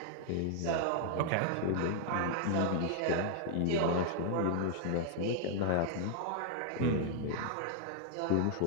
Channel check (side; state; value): both; different; correlation 0.00